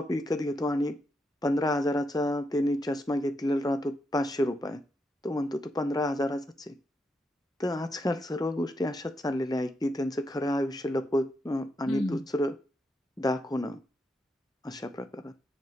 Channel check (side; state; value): both; normal; correlation 0.82